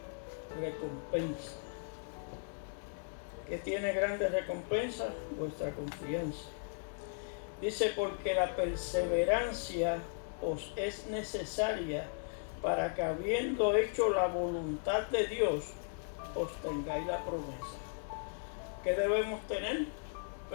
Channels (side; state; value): right; silent; digital silence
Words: recompensa. ¿Qué tiene grande recompensa? Vuestra confianza. Dice: porque la perseverancia os es necesaria para que, habiendo hecho la voluntad de Dios, os tengáis la promesa. ¿Qué debemos tener?